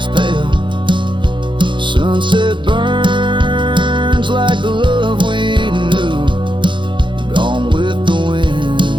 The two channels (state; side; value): late; left; 0.23 ms